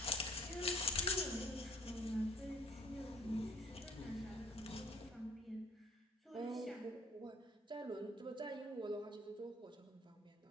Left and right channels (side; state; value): both; normal; correlation 0.58